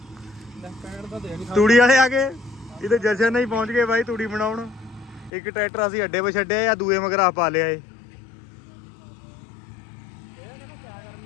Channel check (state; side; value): drops out; right; at 5.3 s